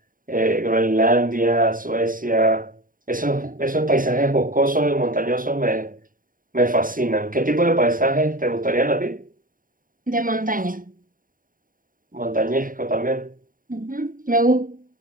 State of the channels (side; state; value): left; late; 0.40 ms